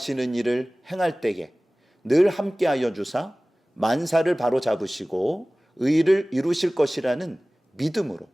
일을 행할 때에 늘 함께하여 주사 만사를 바로잡으시고 의를 이루실 것이라는 믿음으로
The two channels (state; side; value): normal; both; correlation 0.98